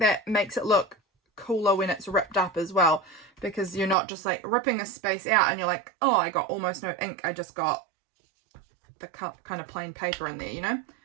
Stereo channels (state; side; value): drops out; left; at 4.0 s